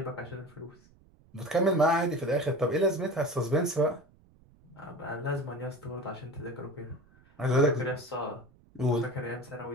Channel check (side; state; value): right; noise; rumble, 28 dB below the sound